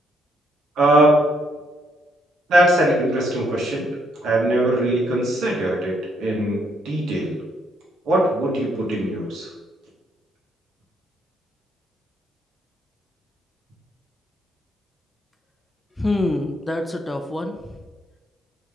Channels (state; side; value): normal; both; correlation 0.72